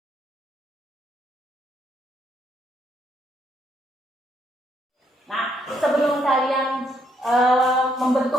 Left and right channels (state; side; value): normal; both; correlation 0.73